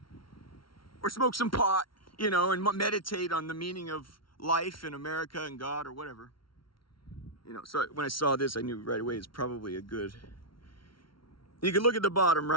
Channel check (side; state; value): right; late; 0.74 ms